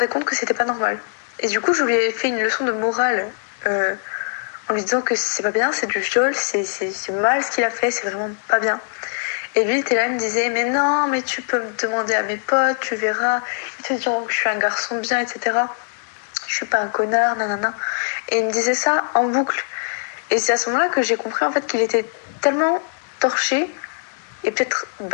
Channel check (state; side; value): silent; right; digital silence